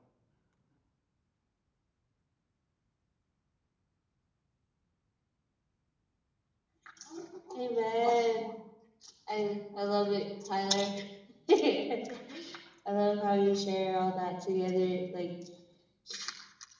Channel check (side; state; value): both; identical; correlation 1.00